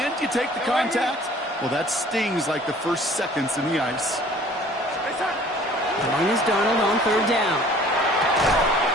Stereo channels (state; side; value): normal; both; correlation 0.51